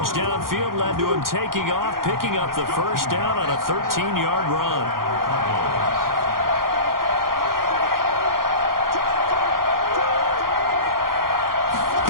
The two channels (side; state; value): left; late; 0.92 ms